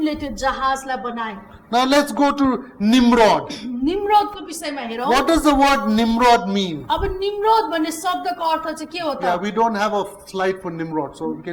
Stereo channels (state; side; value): identical; both; correlation 1.00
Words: त्यो जहाजलाई बनाए। Now let's go to Nimrod. निम्रोदको विषयमा हेरौँ। What does the word Nimrod mean? अब निम्रोद भन्ने शब्दको अर्थ चाहिँ के हो Yeah, त? we don't have a slide for Nimrod, so we